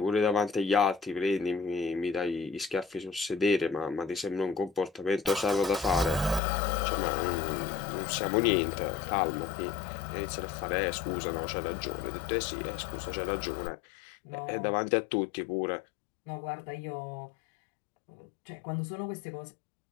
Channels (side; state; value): right; drops out; at 6.4 s